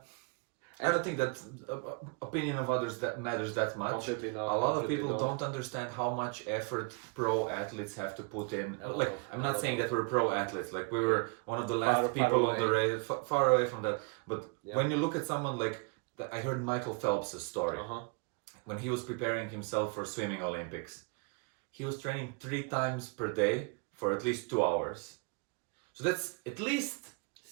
I don't think that opinion of others that matters that much. Completely not. A lot of people Completely not. don't understand how much effort pro athletes have to put in. I'm not saying that we're pro athletes. Like we were one of the last people on the race, far away from that. But when you look at someone like, I heard Michael Phelps' story. When he was preparing himself for swimming Olympics, he was training 3 times per day for at least 2 hours. So that's at least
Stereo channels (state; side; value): quieter; left; 33.8 dB